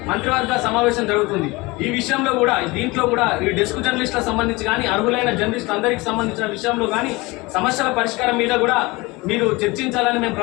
మంత్రివర్గ సమావేశం జరుగుతుంది. ఈ విషయంలో కూడా దీంట్లో కూడా ఈ డెస్క్ జర్నలిస్టులకు సంబంధించి కానీ అర్హులైన జర్నలిస్టులు అందరికీ సంబంధించిన విషయంలో కానీ సమస్యల పరిష్కారం మీద కూడా మీరు చర్చించాలని మేము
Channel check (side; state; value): right; quieter; 23.3 dB